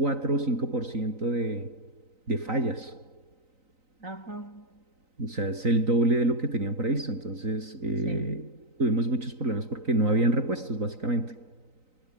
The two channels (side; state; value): left; late; 3.9 ms